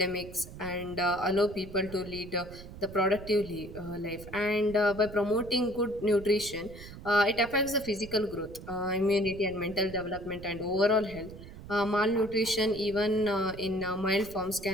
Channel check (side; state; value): right; noise; rumble, 15 dB below the sound